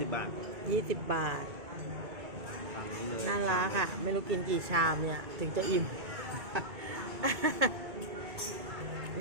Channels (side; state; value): left; late; 2.2 ms